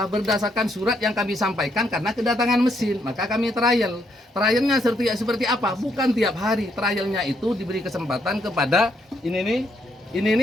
Berdasarkan surat yang kami sampaikan karena kedatangan mesin. Maka kami trial. Trialnya seperti apa? Bukan tiap hari. Trialnya itu diberi kesempatan kepada ini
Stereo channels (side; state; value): both; normal; correlation 0.74